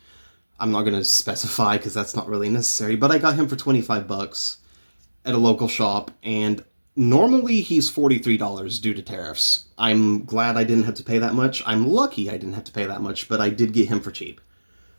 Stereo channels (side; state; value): both; inverted; correlation -1.00